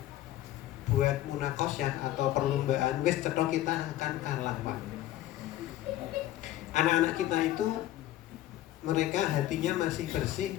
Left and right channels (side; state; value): right; quieter; 14.2 dB